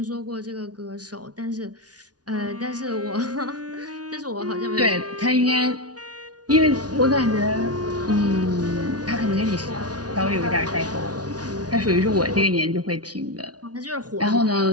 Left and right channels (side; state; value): left; late; 0.69 ms